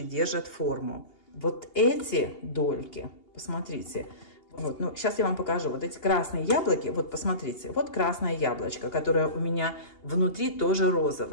держат форму. Вот эти дольки, посмотрите, вот, сейчас я вам покажу, вот эти красные яблоки, вот посмотрите, вот красное яблочко, которое у меня внутри тоже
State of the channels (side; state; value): right; late; 2.8 ms